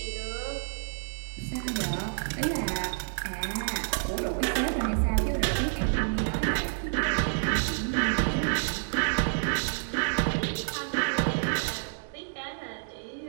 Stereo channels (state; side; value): silent; left; digital silence